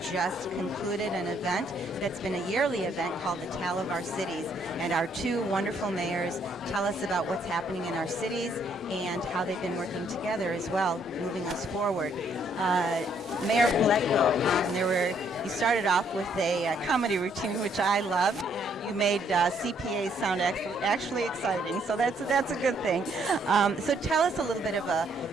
concluded an event that's been a yearly event called the Tale of Our Cities, and our two wonderful mayors tell us about what's happening in our cities and how they've been working together as well, moving us forward. Mayor Paletko, you started off with a comedy routine, which I love. You made CPAs sound actually exciting, so that's a good thing. So tell us a little bit of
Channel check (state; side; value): normal; both; correlation 0.69